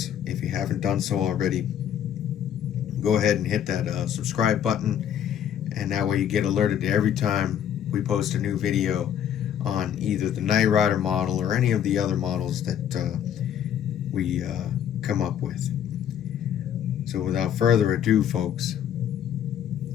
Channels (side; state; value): right; quieter; 9.6 dB